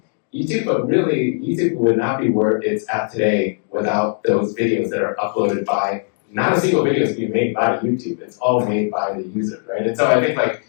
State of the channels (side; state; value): right; silent; digital silence